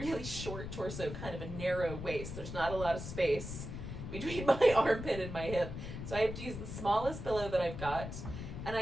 short torso, kind of a narrow waist. There's not a lot of space between my armpit and my hip. So I have to use the smallest pillow that I've got. And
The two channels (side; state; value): left; noise; rumble, 7 dB below the sound